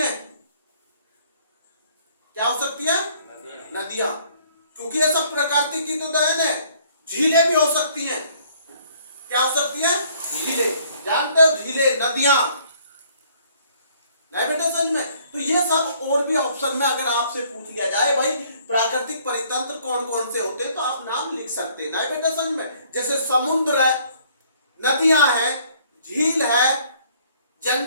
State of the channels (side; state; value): both; inverted; correlation -0.61